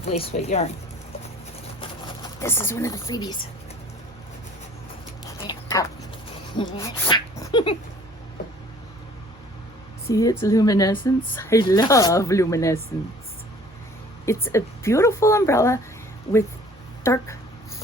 lace weight yarn. This is one of the freebies. See its luminescence? I love luminescence. It's a beautiful umbrella with dark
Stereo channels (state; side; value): normal; both; correlation 0.52